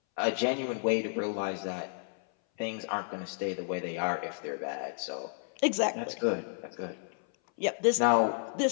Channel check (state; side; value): silent; right; 57 dB below the other